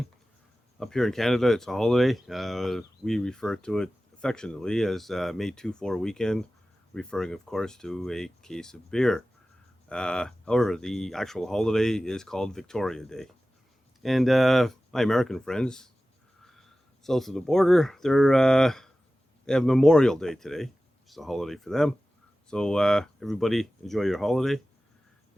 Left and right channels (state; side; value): normal; both; correlation 0.96